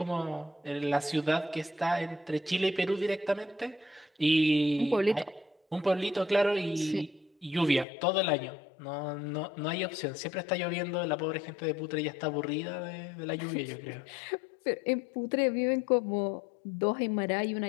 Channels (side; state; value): right; drops out; at 7.9 s